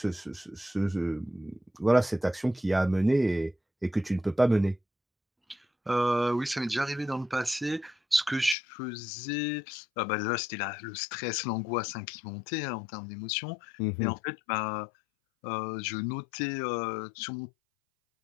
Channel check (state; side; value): drops out; right; at 8.6 s